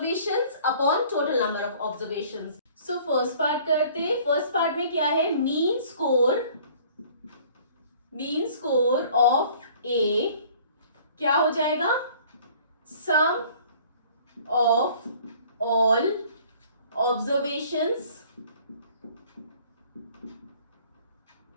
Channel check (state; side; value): inverted; both; correlation -0.53